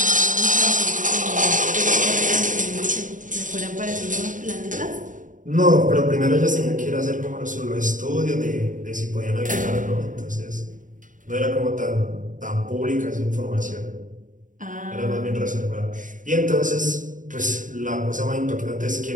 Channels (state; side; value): late; left; 0.38 ms